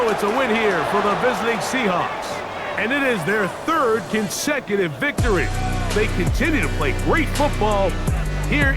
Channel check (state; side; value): identical; both; correlation 1.00